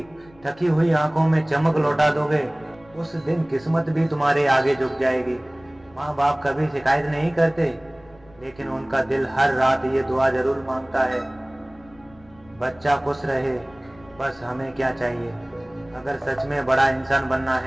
थकी हुई आंखों में चमक लौटा दोगे, उस दिन किस्मत भी तुम्हारे आगे झुक जाएगी। माँ बाप कभी शिकायत नहीं करते, लेकिन उनका दिल हर रात ये दुआ जरूर मांगता है, बच्चा खुश रहे, बस हमें क्या चाहिए। अगर सच में बड़ा इंसान बनना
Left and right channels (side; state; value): left; noise; rumble, 26 dB below the sound